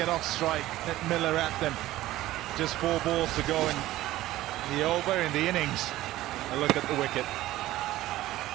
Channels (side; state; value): left; quieter; 15.7 dB